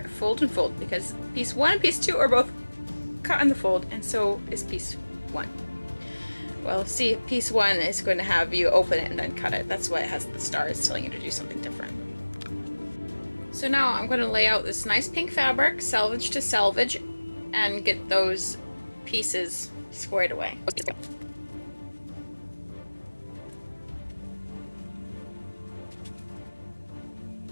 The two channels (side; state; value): both; inverted; correlation -1.00